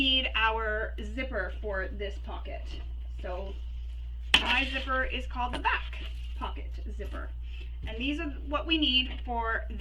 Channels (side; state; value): both; identical; correlation 1.00